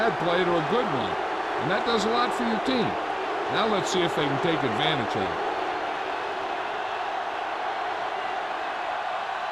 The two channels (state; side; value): identical; both; correlation 1.00